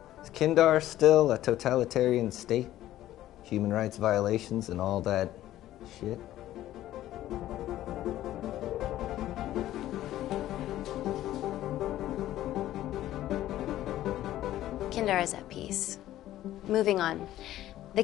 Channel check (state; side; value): quieter; right; 13.8 dB